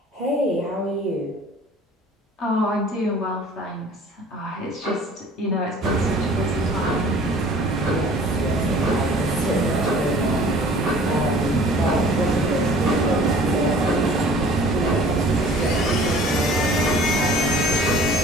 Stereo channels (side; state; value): both; normal; correlation 0.49